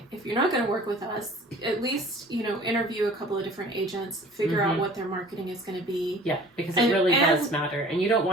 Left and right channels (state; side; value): normal; both; correlation 0.47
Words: if you're not going to work with us, at least, you know, interview a couple of different agents, figure out what their marketing is going to be. Yeah, because it really does matter, and you don't